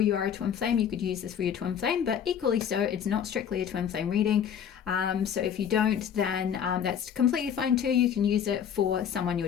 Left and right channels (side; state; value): right; quieter; 8.4 dB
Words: are a twin flame, you could use this for your twin flame, but equally so, it's not strictly a twin flame reading. So if you don't, then that's completely fine too. You can use it for someone you're